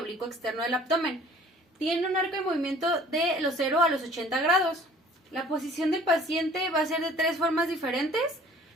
externo del abdomen. Tiene un arco de movimiento de los 0 a los 80 grados. La posición del paciente va a ser de 3 formas diferentes.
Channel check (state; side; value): normal; both; correlation 0.51